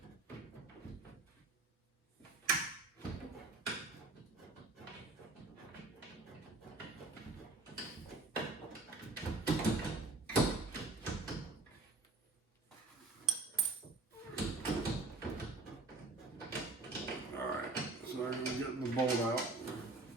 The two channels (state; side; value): quieter; left; 3.3 dB